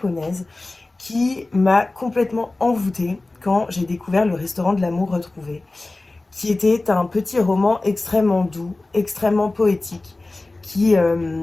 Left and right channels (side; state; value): right; quieter; 3.0 dB